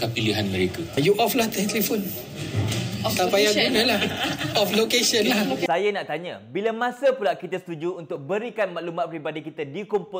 pilihan mereka? You off lah telefon. Tak payah guna lah. Off location lah. Saya nak tanya, bila masa pula kita setuju untuk berikan maklumat peribadi kita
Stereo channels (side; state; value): both; identical; correlation 1.00